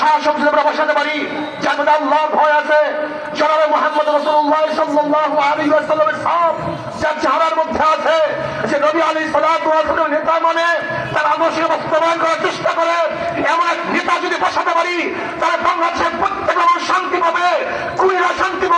শাসক যদি আমরা বসাতে পারি যার মধ্যে আল্লাহর ভয় আছে, জনাবে মুহাম্মদ রাসূলুল্লাহ সাল্লাল্লাহু আলাইহি ওয়াসাল্লামের সব যার চেহারার মধ্যে আছে, যে নবী আলাইহিস সালাতু ওয়াস সালামের নেতা মানে তার আদর্শ বাস্তবায়ন করার চেষ্টা করে, এমন এক নেতা যদি বসাতে পারি, তাহলে বাংলাদেশের প্রত্যেক মানুষ শান্তি পাবে, কুড়িরা শান্তি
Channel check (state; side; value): identical; both; correlation 1.00